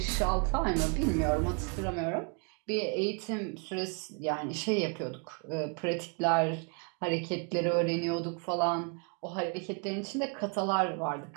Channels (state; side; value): quieter; left; 35.6 dB